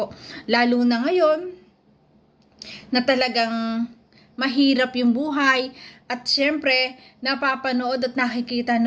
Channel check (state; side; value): identical; both; correlation 1.00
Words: Lalo na ngayon, na talagang mahirap yung buhay, at syempre, napapanood at nakikita